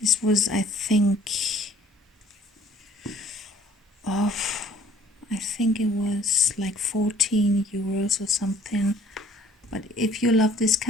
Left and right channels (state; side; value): normal; both; correlation 0.56